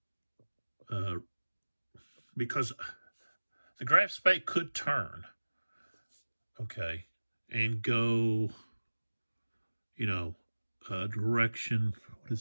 because the graph spay could turn, okay, and go, you know, direction, what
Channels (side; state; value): both; inverted; correlation -1.00